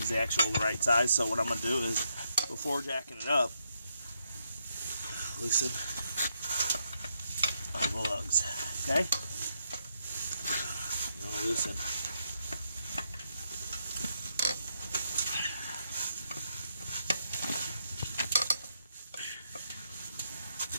the actual right size, so what I'm going to do is, before jacking it up, loosen the lugs, okay? You're going to loosen.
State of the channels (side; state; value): both; inverted; correlation -0.79